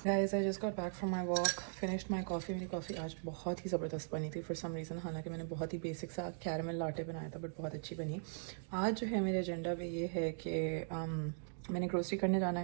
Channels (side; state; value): left; silent; digital silence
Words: Guys, I just got back from my walk, finished my coffee. मेरी कॉफ़ी आज बहुत ही ज़बरदस्त बनी थी फॉर सम रीज़न। हालांकि मैंने बहुत ही बेसिक सा कैरमल लाटे बनाया था, बट बहुत अच्छी बनी। आज जो है मेरे एजेंडा पे ये है कि मैंने ग्रोसरी करने जाना